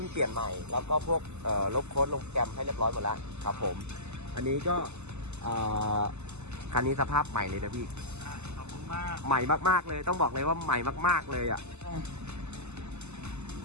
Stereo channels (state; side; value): late; left; 0.82 ms